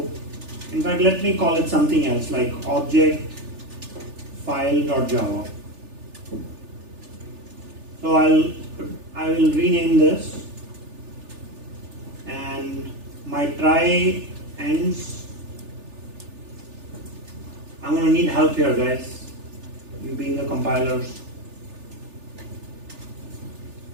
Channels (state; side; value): late; left; 3.4 ms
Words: in fact, let me call it something else like object file.java. So I will rename this, and my try ends. I'm going to need help here, guys. You being the compilers.